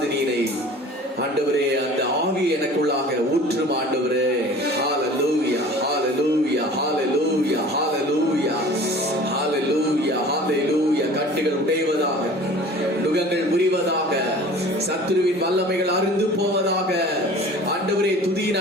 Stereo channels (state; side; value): normal; both; correlation 0.44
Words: ஆண்டவரே அந்த ஆவி எனக்குள்ளாக ஊற்றும் ஆண்டவரே. ஹalleluya ஹalleluya ஹalleluya ஹalleluya ஹalleluya ஹalleluya. கட்டுகள் உடைவதாக, நுகங்கள் முறிவதாக, சத்துருவின் வல்லமைகள் அறுந்து போவதாக. ஆண்டவரே, துதியின்